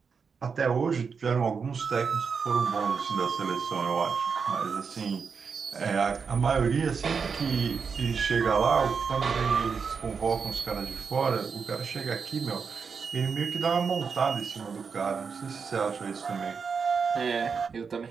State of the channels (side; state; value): left; quieter; 5.7 dB